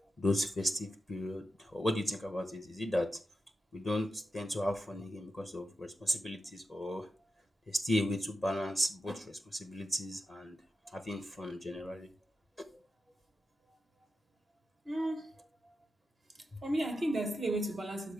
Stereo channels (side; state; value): both; normal; correlation 0.89